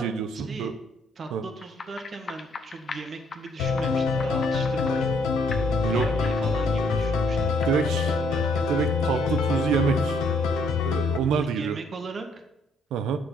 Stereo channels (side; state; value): both; normal; correlation 0.66